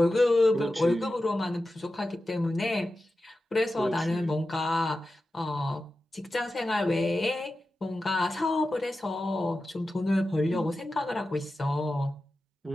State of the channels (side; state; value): both; normal; correlation 0.93